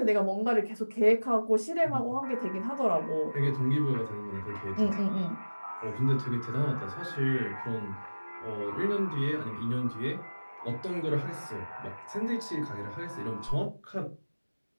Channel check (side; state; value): both; inverted; correlation -1.00